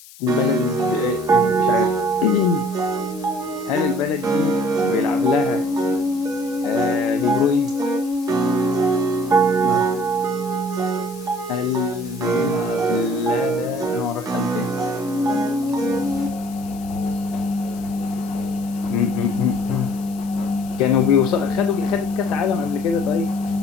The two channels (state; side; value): noise; left; hiss, 20 dB below the sound